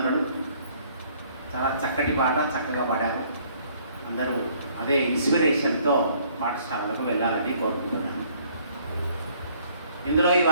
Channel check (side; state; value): both; inverted; correlation -0.61